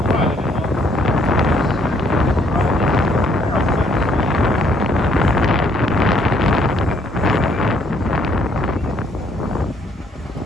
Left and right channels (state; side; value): normal; both; correlation 0.67